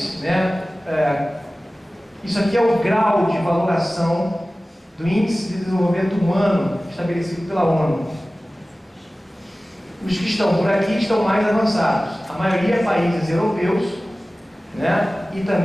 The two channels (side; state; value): both; normal; correlation 0.97